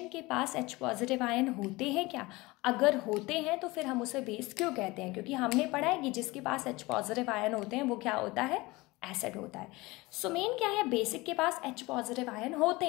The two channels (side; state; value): right; quieter; 21.9 dB